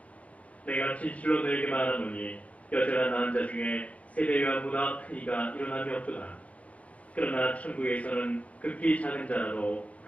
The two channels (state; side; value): late; right; 0.066 ms